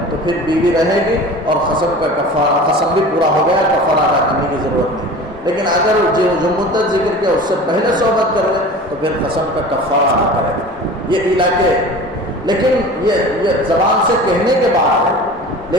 تو پھر بیوی رہے گی اور قسم کا کفارہ، قسم بھی پورا ہو گیا، کفارہ ادا کرنے کی ضرورت نہیں۔ لیکن اگر جو مدت ذکر کیا اس سے پہلے صحبت کر لے تو پھر قسم کا کفارہ ادا کرے گا۔ یہ ایلا کے، لیکن یہ زبان سے کہنے کے بعد ہے۔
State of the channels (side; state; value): both; normal; correlation 0.38